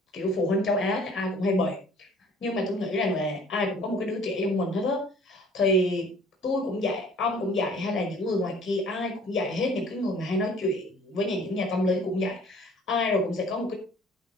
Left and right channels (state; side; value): normal; both; correlation 0.53